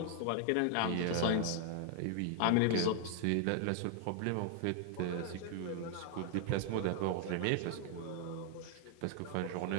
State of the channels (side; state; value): both; different; correlation 0.00